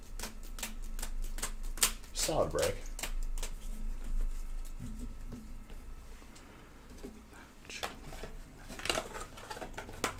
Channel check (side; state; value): both; identical; correlation 1.00